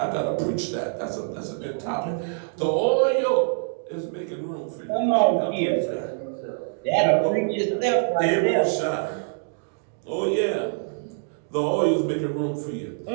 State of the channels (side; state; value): left; silent; digital silence